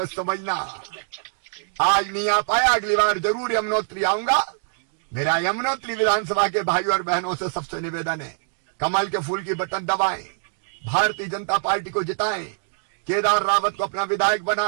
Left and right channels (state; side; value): silent; left; digital silence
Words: समझना। आज नहीं आ पाया, अगली बार जरूर यमुनोत्री आऊंगा। मेरा यमुनोत्री विधानसभा के भाइयों और बहनों से सबसे निवेदन है, कमल के फूल की बटन दबाएं, भारतीय जनता पार्टी को जिताएं, केदार रावत को अपना विधायक